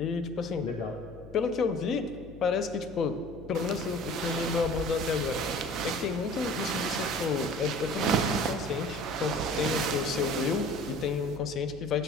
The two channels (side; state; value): left; noise; hum, 18 dB below the sound